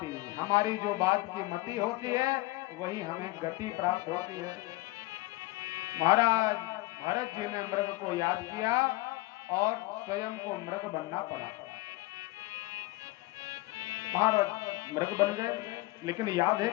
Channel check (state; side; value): quieter; right; 20.6 dB